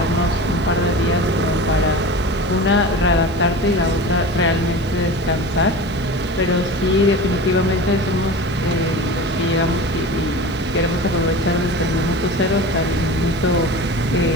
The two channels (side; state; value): right; noise; hiss, 26 dB below the sound